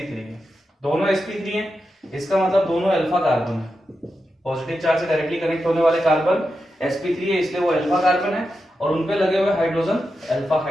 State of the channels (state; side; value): normal; both; correlation 0.89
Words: है, दोनों sp3 है, इसका मतलब दोनों अल्फा कार्बन है। पॉजिटिव चार्ज से डायरेक्टली कनेक्ट होने वाले कार्बन sp3 है, इसलिए वो अल्फा कार्बन है और उनपे लगे हुए हाइड्रोजन अल्फा